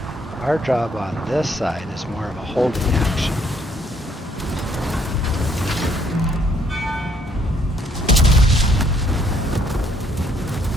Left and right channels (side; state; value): both; normal; correlation 0.67